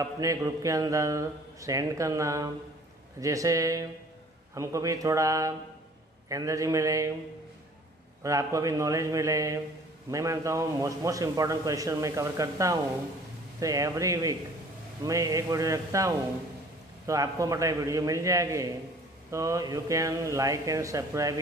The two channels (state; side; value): normal; both; correlation 0.51